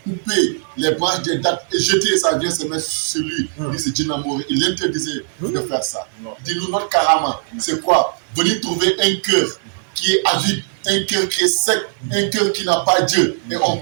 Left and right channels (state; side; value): silent; left; digital silence